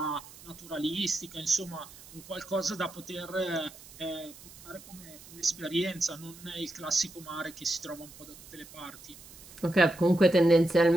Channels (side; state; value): right; noise; hiss, 19 dB below the sound